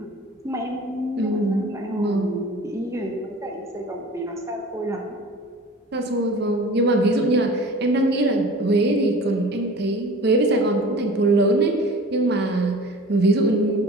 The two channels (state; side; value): normal; both; correlation 0.41